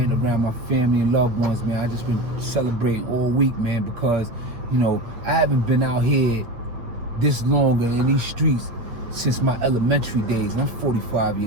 Around my family and loved ones, man. I just been celebrating all week, man, because, you know, I haven't been out here this long in these streets since my elementary days. And I'm 45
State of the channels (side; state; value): left; late; 8.5 ms